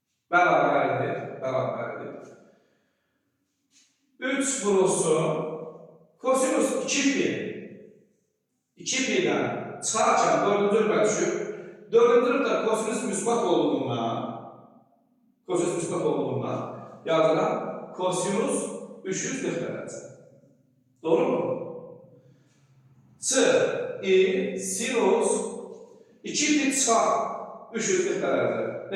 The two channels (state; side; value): identical; both; correlation 1.00